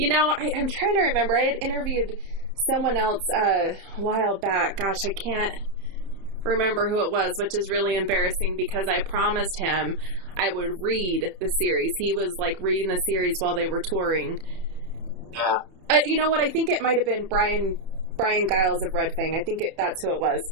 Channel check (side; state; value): left; late; 30 ms